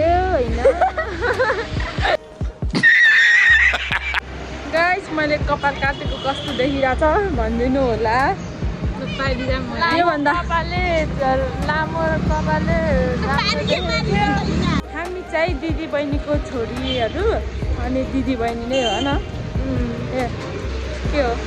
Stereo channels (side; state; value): both; identical; correlation 1.00